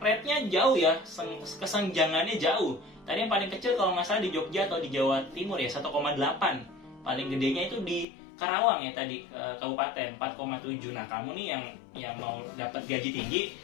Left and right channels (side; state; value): right; drops out; at 8.1 s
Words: jauh ya, kesenjangannya jauh. Tadi yang paling kecil kalau nggak salah di Jogja atau di Jawa Timur ya, 1,8. Paling gedenya itu di Karawang ya tadi, kabupaten, 4,7. Nah, kamu nih yang mau dapat gaji tinggi,